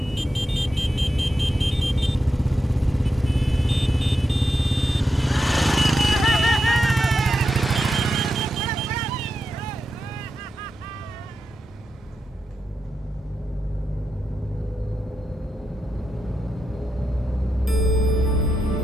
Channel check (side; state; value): both; normal; correlation 0.87